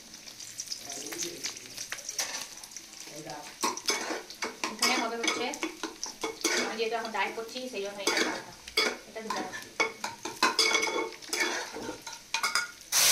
এখানে হবে হচ্ছে, আমি যেহেতু এখন ডায়েট করছি সেই জন্য এটা দিতে হবে।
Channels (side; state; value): both; identical; correlation 1.00